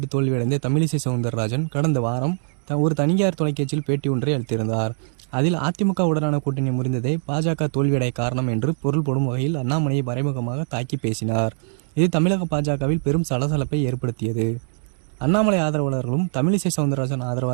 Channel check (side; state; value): left; silent; digital silence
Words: தோல்வியடைந்த தமிழிசை சவுந்தரராஜன் கடந்த வாரம் ஒரு தனியார் தொலைக்காட்சியில் பேட்டி ஒன்றை அளித்திருந்தார். அதில் அதிமுகவுடனான கூட்டணி முறிந்ததே பாஜக தோல்வியடைய காரணம் என்று பொருள் போடும் வகையில் அண்ணாமலையை மறைமுகமாக தாக்கி பேசினார். இது தமிழக பாஜகவில் பெரும் சலசலப்பை ஏற்படுத்தியது. அண்ணாமலை ஆதரவாளர்களும் தமிழிசை சவுந்தரராஜன்